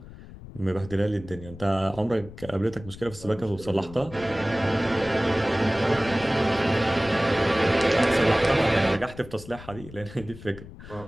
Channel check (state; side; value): noise; left; rumble, 16 dB below the sound